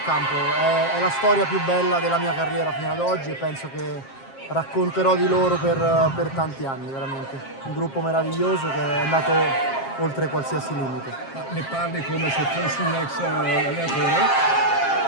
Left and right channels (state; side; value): late; right; 7.5 ms